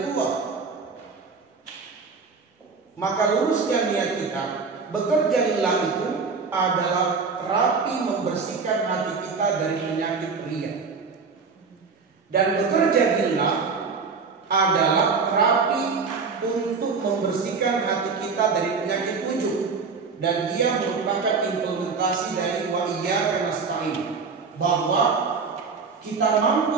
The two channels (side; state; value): left; quieter; 5.0 dB